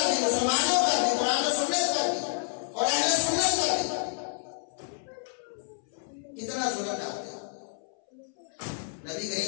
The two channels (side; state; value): right; silent; 59 dB below the other